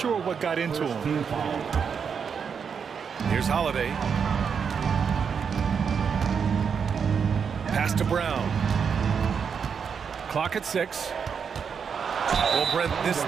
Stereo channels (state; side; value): quieter; left; 6.6 dB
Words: what got into him. Here's Holiday. Pass to Brown. Clock at 6. Well, Brent, this